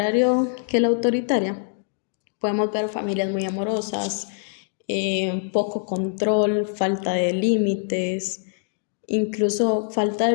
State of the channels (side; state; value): right; silent; digital silence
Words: que la autoritaria, podemos ver familias muy amorosas, poco control, falta de límites, incluso falta